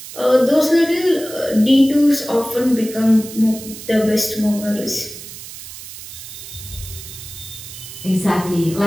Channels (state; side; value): noise; right; hiss, 13 dB below the sound